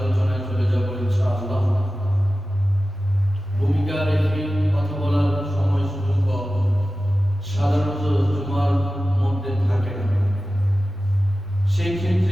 চলে যাবো ইনশাআল্লাহ। ভূমিকা রেখে কথা বলার সময় সুযোগ সাধারণত জুমার মধ্যে থাকে না। সেই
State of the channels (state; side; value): normal; both; correlation 0.95